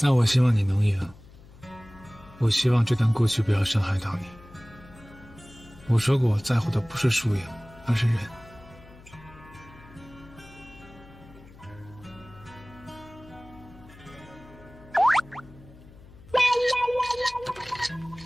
那我希望你能赢。我希望这段过去不要伤害到你。我说过，我在乎的不是输赢，而是人。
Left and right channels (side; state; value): left; noise; hum, 21 dB below the sound